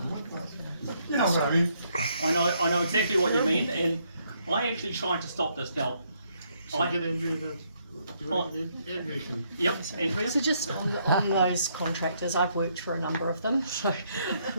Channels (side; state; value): both; inverted; correlation -0.72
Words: what that is. But you know what I mean. I know exactly what you mean, and I actually tried to stop this now. Yep, Andrea. So just on those contractors, I've worked for a number of them, so